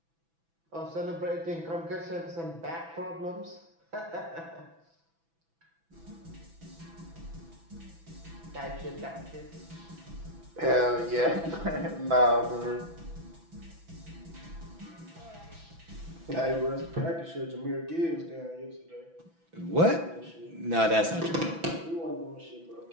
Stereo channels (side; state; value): left; late; 6.0 ms